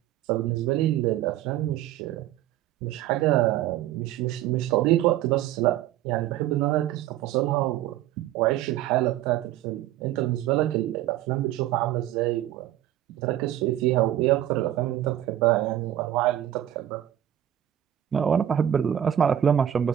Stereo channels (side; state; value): left; quieter; 12.0 dB